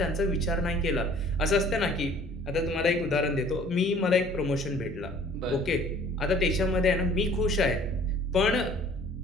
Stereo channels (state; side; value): normal; both; correlation 0.53